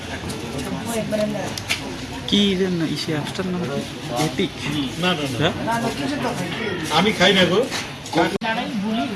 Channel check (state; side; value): identical; both; correlation 1.00